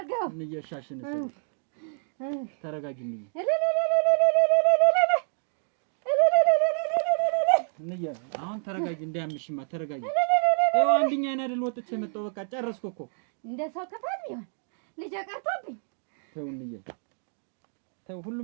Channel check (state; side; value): silent; left; 59 dB below the other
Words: እንዬ። ሻሽን ተረጋጊ እንዬ። እንዬ አሁን ተረጋጊ፣ እንዳያምሽማ ተረጋጊ። ይኸው አንድኛዬን አይደል ወጥቼ መጣሁ። በቃ ጨረስኩ እኮ። እንደ ሰው ክፋት ቢሆን ልጄ ቀርቶብኝ። ተው እንዬ ተው፣